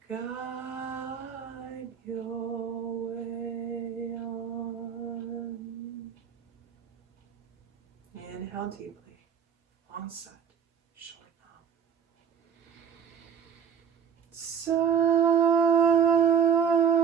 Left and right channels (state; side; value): quieter; left; 7.5 dB